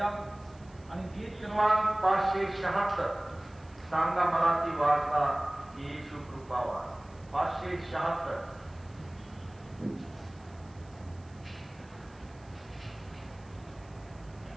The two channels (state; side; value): noise; right; hiss, 29 dB below the sound